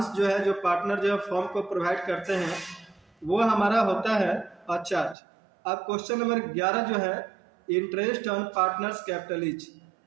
जो है जो पार्टनर जो है फॉर्म को प्रोवाइड करते हैं वो हमारा होता है चार्ज। अब क्वेश्चन नंबर 11 जो है interest on partners capital is,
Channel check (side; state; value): left; drops out; at 5.2 s